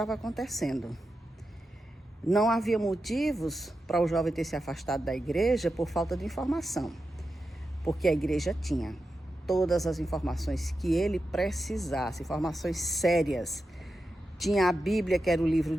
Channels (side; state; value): both; normal; correlation 0.90